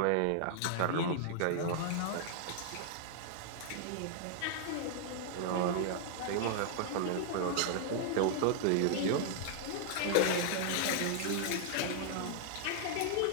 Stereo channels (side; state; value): both; different; correlation -0.01